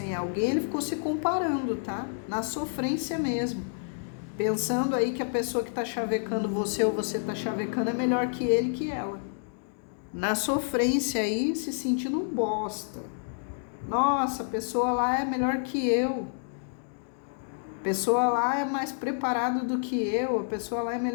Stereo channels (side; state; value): right; silent; digital silence